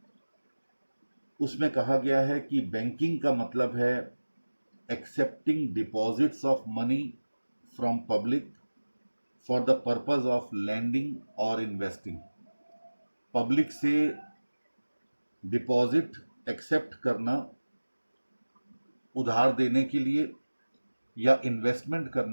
उसमें कहा गया है कि बैंकिंग का मतलब है accepting deposits of money from public for the purpose of lending और इन्वेस्टिंग। पब्लिक से डिपॉजिट एक्सेप्ट करना उधार देने के लिए या इन्वेस्टमेंट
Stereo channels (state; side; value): inverted; both; correlation -1.00